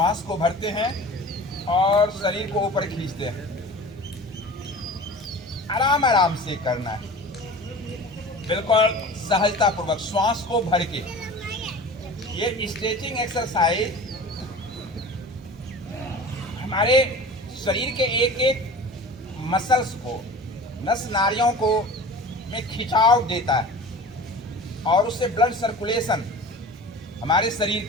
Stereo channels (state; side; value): normal; both; correlation 0.38